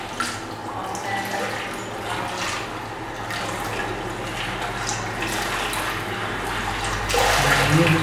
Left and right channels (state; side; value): identical; both; correlation 1.00